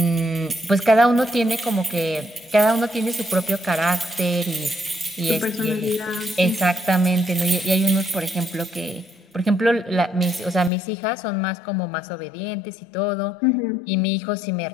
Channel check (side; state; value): right; drops out; at 10.7 s